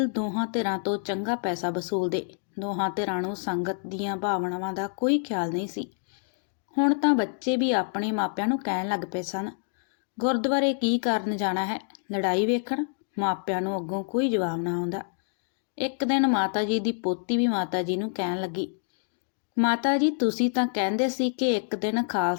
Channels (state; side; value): silent; right; digital silence